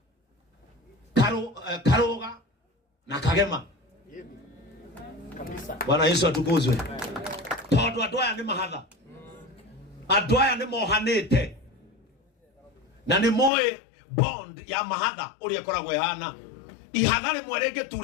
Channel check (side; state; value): right; drops out; at 13.5 s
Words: Karuga na Kagema kabisa. Bwana Yesu atukuzwe. Tondu andu aya ni mahatha, andu aya ni mohanite na ni moe bond ya mahatha uria koragwo ihana ihatha rimwe